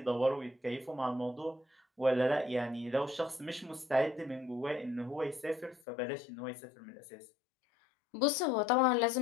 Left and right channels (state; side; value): drops out; right; at 5.8 s